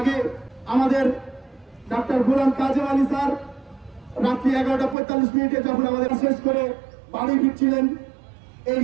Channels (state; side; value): drops out; left; at 5.0 s